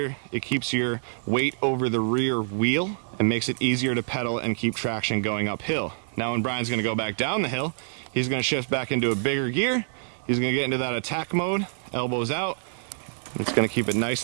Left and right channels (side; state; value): left; silent; digital silence